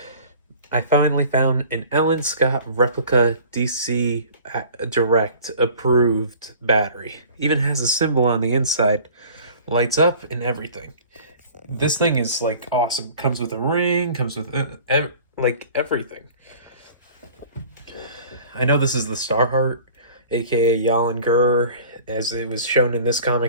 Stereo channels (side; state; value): both; inverted; correlation -0.46